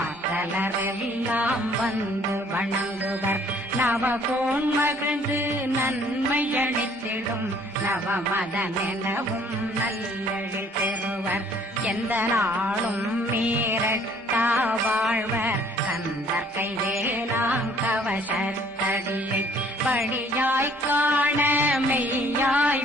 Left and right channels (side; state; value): both; normal; correlation 0.59